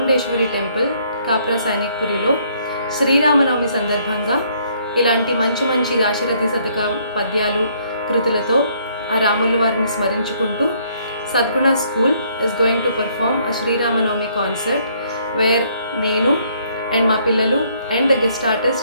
టెంపుల్ కాప్రా సైనిక్పురిలో శ్రీరామనవమి సందర్భంగా ఇలాంటి మంచి మంచి దాశరథి శతక పద్యాలు కృతులతో ఆ రాముల వారిని స్మరించుకుంటూ Sadguna school is going to perform a Sriramanavami concert where నేను అండ్ మా పిల్లలు and the guest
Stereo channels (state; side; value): inverted; both; correlation -0.66